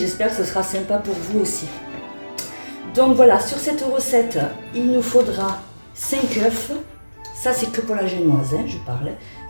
que ce sera sympa pour vous aussi. Donc voilà, sur cette recette, il nous faudra 5 œufs. Ça, c'est que pour la génoise, hein, je parle.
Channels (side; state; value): both; inverted; correlation -1.00